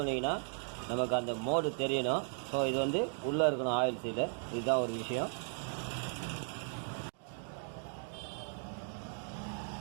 நமக்கு அந்த மோடு தெரியணும். ஸோ இது வந்து உள்ளே இருக்கணும் ஆயில் சீலு. இதுதான் ஒரு விஷயம்.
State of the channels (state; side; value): silent; left; 53 dB below the other